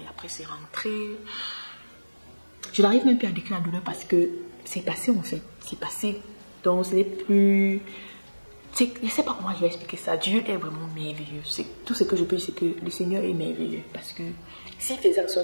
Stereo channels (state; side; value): inverted; both; correlation -1.00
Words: après c'est rentré. Je n'arrive même plus à décrire la douleur parce que c'est passé en fait, c'est passé. Donc ce n'est plus... Je ne sais pas comment je vais expliquer ça. Dieu est vraiment merveilleux. Tout ce que je peux dire, c'est que le Seigneur est merveilleux. Parce que s'il faisait en